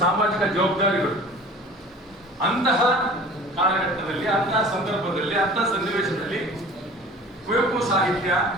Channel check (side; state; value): both; normal; correlation 0.43